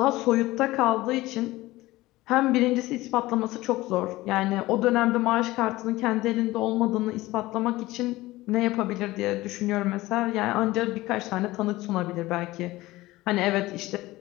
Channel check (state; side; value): quieter; right; 18.4 dB